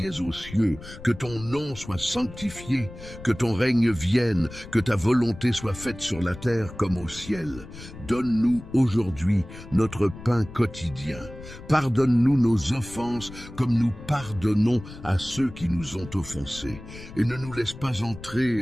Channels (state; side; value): noise; left; rumble, 15 dB below the sound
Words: es aux cieux, que ton nom soit sanctifié, que ton règne vienne, que ta volonté soit faite sur la terre comme au ciel. Donne-nous aujourd'hui notre pain quotidien. Pardonne-nous nos offenses comme nous pardonnons à ceux qui nous ont offensés. Et ne nous laisse pas